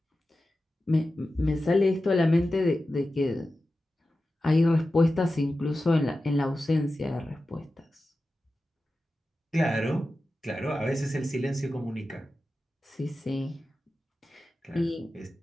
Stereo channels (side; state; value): both; normal; correlation 0.93